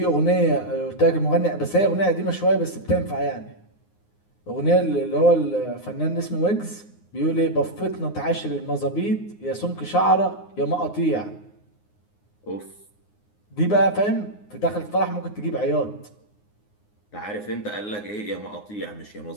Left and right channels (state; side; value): late; right; 9.6 ms